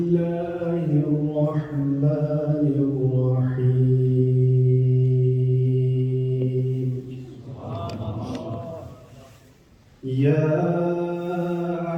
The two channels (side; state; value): both; identical; correlation 1.00